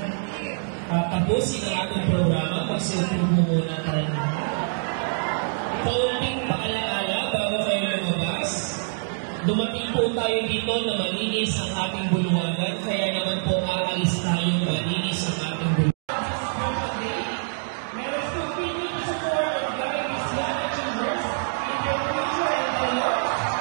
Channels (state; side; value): silent; left; digital silence